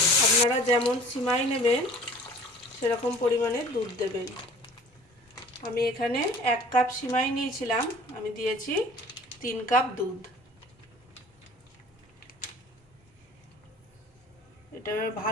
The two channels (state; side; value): normal; both; correlation 0.47